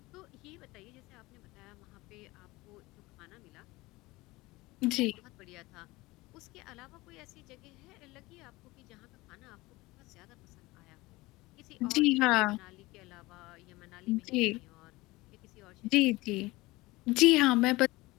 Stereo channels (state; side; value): quieter; right; 20.9 dB